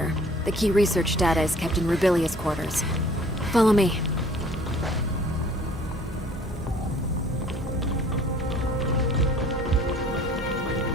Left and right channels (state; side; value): normal; both; correlation 0.53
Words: The key research data is kept in Rubilia's quarters. Follow me.